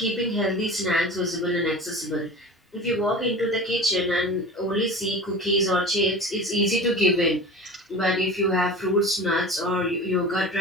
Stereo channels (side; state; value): both; normal; correlation 0.35